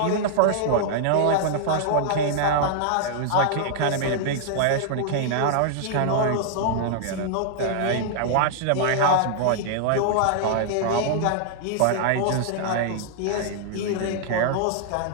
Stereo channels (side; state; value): both; different; correlation -0.01